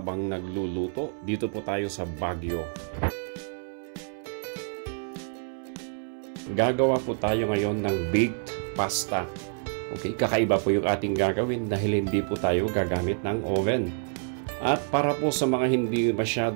nagluluto. Dito po tayo sa Baguio. Gagawa po tayo ngayon ng baked pasta. Okay, kakaiba po yung ating gagawin dahil hindi po tayo gagamit ng oven. At para po sa mga hindi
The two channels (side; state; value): left; silent; 60 dB below the other